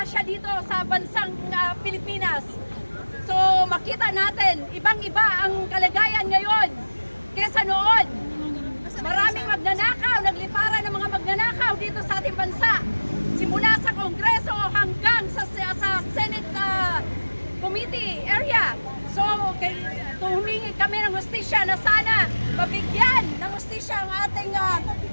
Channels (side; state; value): both; inverted; correlation -1.00